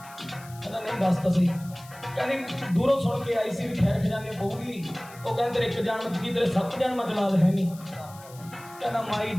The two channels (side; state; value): left; noise; hiss, 21 dB below the sound